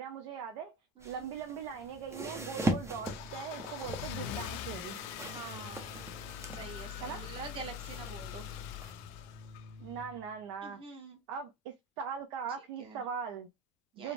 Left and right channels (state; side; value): normal; both; correlation 0.31